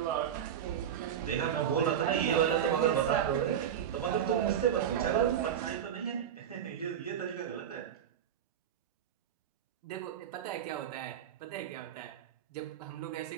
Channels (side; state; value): left; quieter; 9.2 dB